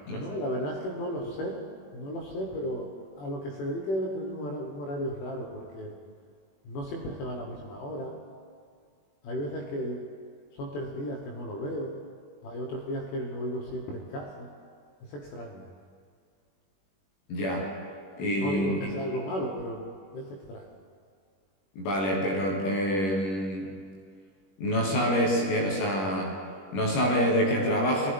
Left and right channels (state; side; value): late; right; 21 ms